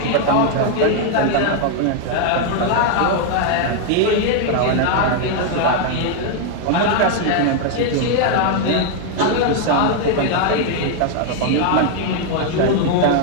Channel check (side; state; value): both; different; correlation 0.00